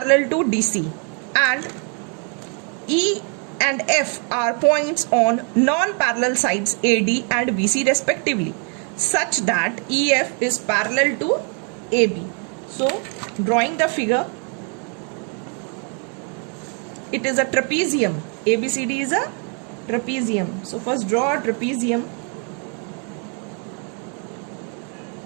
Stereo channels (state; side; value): quieter; left; 39.8 dB